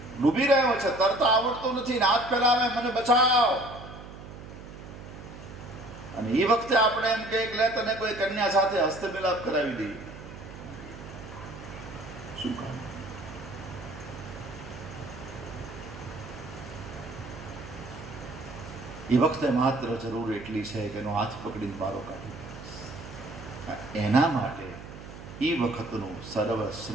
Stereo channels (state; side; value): noise; right; hum, 14 dB below the sound